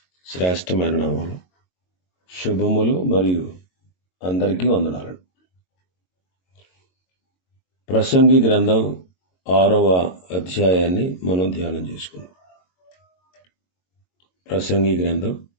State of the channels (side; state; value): right; late; 22 ms